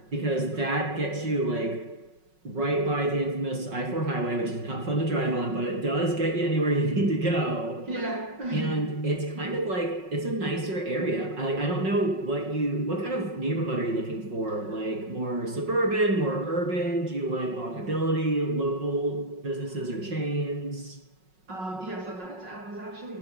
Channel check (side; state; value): left; late; 5.4 ms